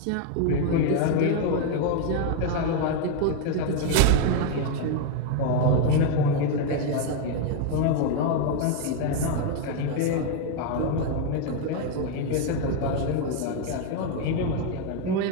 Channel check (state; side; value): different; both; correlation 0.01